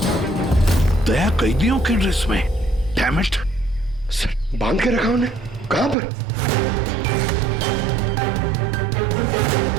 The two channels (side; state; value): left; drops out; at 6.0 s